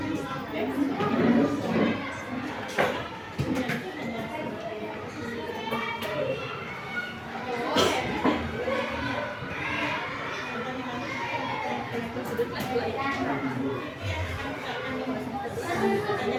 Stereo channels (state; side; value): identical; both; correlation 1.00